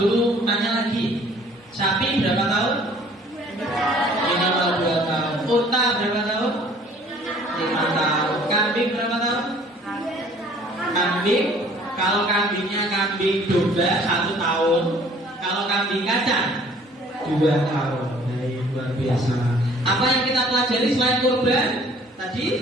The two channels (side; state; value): both; normal; correlation 0.55